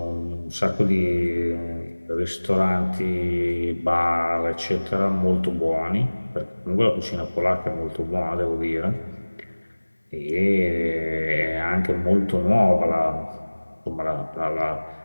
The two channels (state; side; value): inverted; both; correlation -1.00